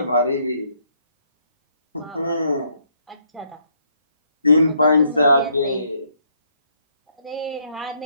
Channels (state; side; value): inverted; both; correlation -0.71